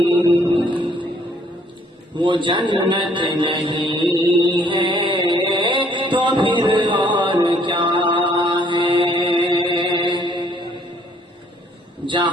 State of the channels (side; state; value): both; normal; correlation 0.63